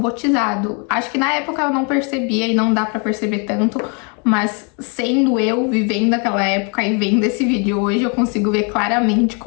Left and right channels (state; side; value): quieter; right; 35.9 dB